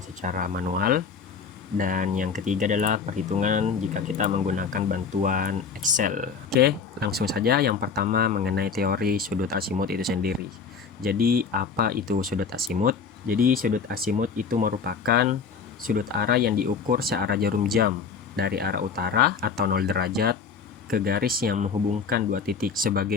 secara manual. Dan yang ketiga adalah perhitungan jika kita menggunakan bantuan Excel. Oke, langsung saja. Yang pertama, mengenai teori sudut azimut itu sendiri. Jadi, apa itu sudut azimut? Jadi sudut azimut itu merupakan sudut arah yang diukur searah jarum jam dari arah utara atau 0 derajat ke garis yang menghubungkan dua titik.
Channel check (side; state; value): right; quieter; 5.8 dB